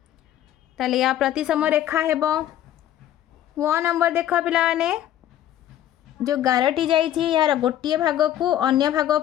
ताले या प्रतिसम रेखा हेबो। व नंबर देख पिलाने जो गारटी जाइछि यार गोटे भाग को अन्य भाग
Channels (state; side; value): quieter; right; 11.9 dB